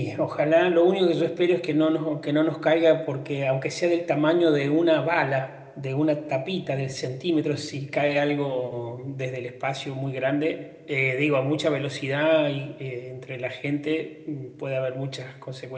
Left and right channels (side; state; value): both; identical; correlation 1.00